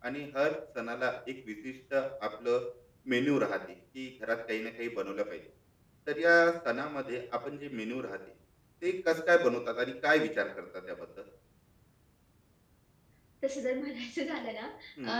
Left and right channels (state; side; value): identical; both; correlation 1.00